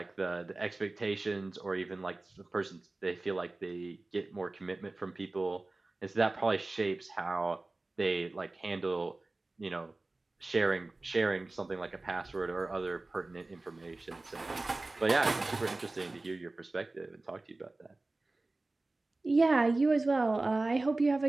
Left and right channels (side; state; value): left; quieter; 3.1 dB